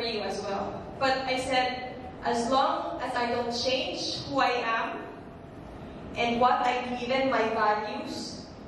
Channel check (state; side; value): identical; both; correlation 1.00